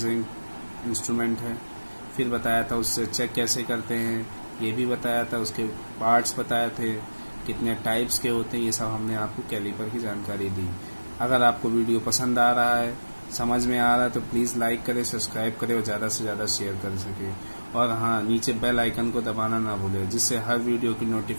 इंस्ट्रूमेंट है। फिर बताया था उससे चेक कैसे करते हैं, ये भी बताया था। उसके पार्ट्स बताए थे, कितने टाइप्स के होते हैं, ये सब हमने आपको कैलिपर की जानकारी दी। अगर आपको वीडियो पसंद आ रहा है, समझ में आ रहा है तो प्लीज़ लाइक करें, सब्सक्राइब करें और ज़्यादा से ज़्यादा शेयर कर सके। और हाँ, नीचे बेल आइकन को दबाना ना भूलें जिससे हर वीडियो की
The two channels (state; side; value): inverted; both; correlation -1.00